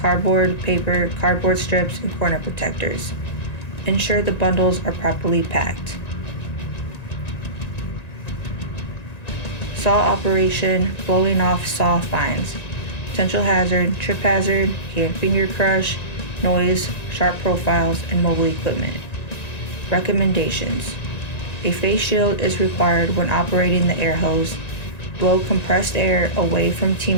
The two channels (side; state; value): right; late; 1.9 ms